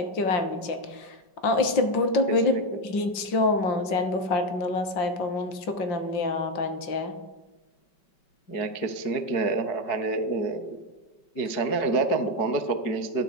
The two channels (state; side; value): late; right; 5.2 ms